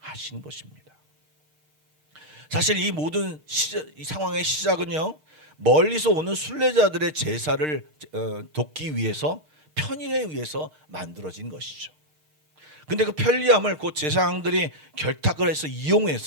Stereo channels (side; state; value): left; late; 6.5 ms